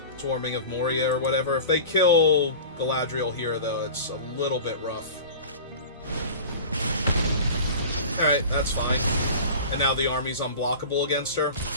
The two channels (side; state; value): both; inverted; correlation -0.36